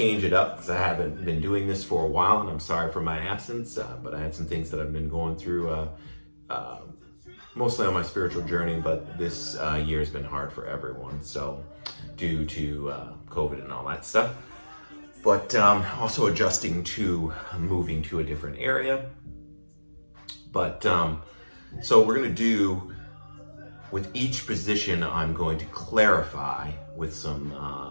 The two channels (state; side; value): inverted; both; correlation -1.00